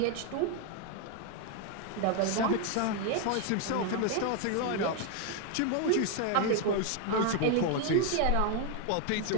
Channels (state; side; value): different; both; correlation 0.01